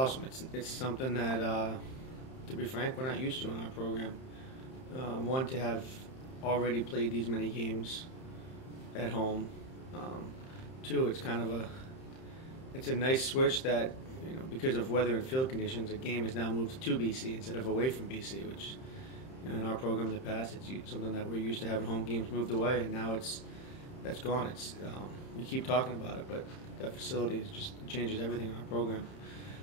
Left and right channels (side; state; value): right; late; 31 ms